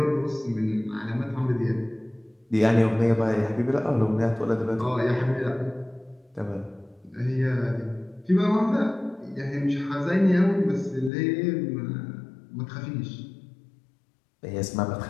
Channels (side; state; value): right; drops out; at 11.1 s